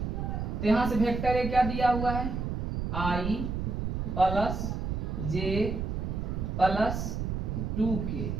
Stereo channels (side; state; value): right; noise; rumble, 2 dB below the sound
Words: तो यहाँ से वेक्टर a क्या दिया हुआ है, i plus J plus 2k